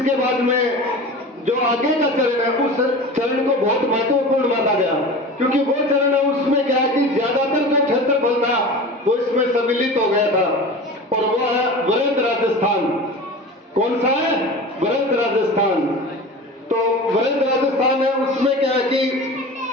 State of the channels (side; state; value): both; normal; correlation 0.34